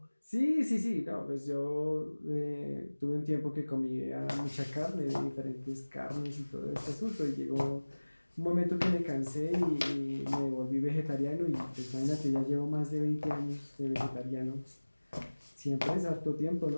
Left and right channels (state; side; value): inverted; both; correlation -1.00